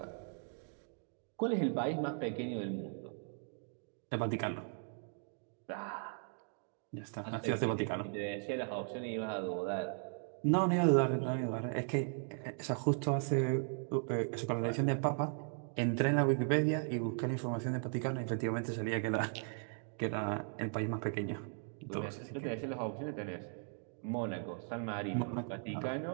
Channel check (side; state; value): left; silent; 53 dB below the other